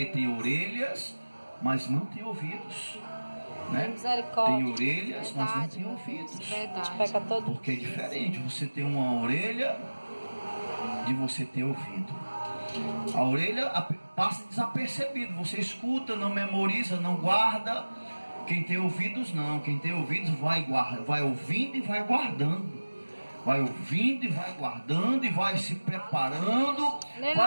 tem orelhas, mas não tem ouvidos, né? Tem orelhas, mas não tem ouvidos. Porque é diferente você ter uma orelha de você ter ouvido. A orelha passa desapercebido, você escuta, não memoriza, não guarda. Quem tem ouvidos não, quem tem ouvidos vai ouvindo e vai guardando. Vai ouvindo e vai guardando e vai se preparando,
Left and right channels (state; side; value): inverted; both; correlation -1.00